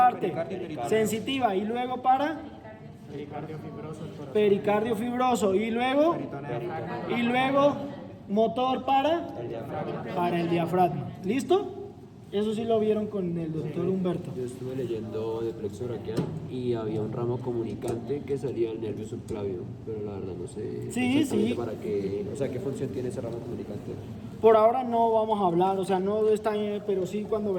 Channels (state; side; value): identical; both; correlation 1.00